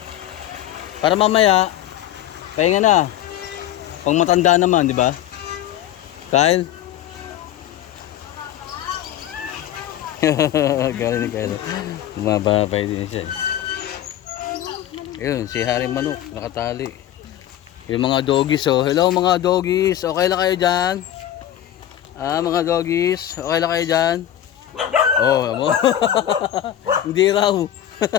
Para mamaya, pahinga na. Pang matanda naman, di ba? Kyle? Galing ni Kyle. Bumababay din siya. Yun, si Haring Manok, nakatali. Yung mga doggies, oh. Hello mga doggies, okay lang kayo dyan? Ah, mga doggies, okay lang kayo dyan? Oh, mo. Hindi raw.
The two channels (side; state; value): right; quieter; 11.8 dB